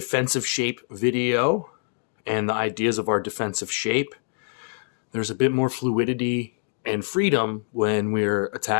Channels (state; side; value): silent; right; digital silence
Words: shape video and the ideas of our defensive shape, there's a bit more fluidity and freedom when we're